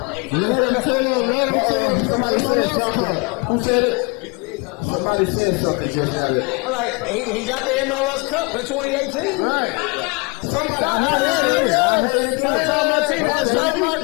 Let him tell him. Somebody said something. Who said it? Somebody said something just now that. All right, he got the MLS Cup in 2018. Right. Somebody, I heard it again. Okay. All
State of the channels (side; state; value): right; quieter; 29.7 dB